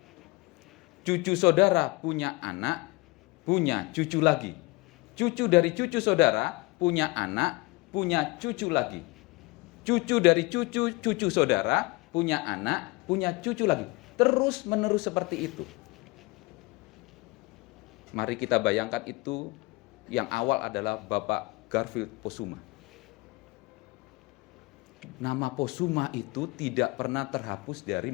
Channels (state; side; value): quieter; right; 23.9 dB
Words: Cucu saudara punya anak, punya cucu lagi. Cucu dari cucu saudara punya anak, punya cucu lagi. Cucu dari cucu saudara punya anak, punya cucu lagi. Terus menerus seperti itu. Mari kita bayangkan itu, yang awal adalah Bapak Garfield Posuma. Nama Posuma itu tidak pernah terhapus dari